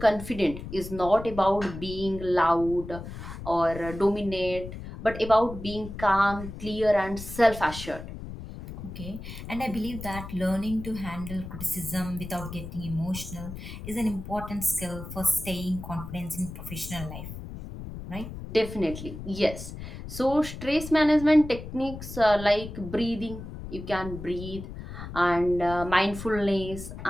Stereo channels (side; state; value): left; noise; rumble, 10 dB below the sound